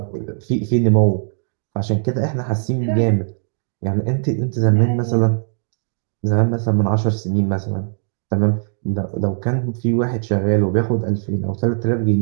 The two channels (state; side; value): silent; left; digital silence